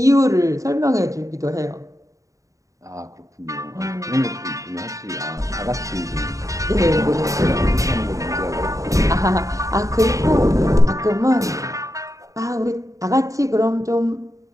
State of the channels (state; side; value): late; left; 0.16 ms